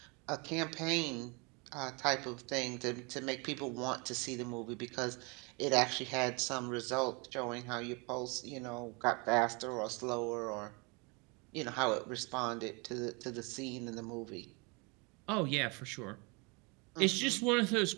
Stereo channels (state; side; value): quieter; left; 30.1 dB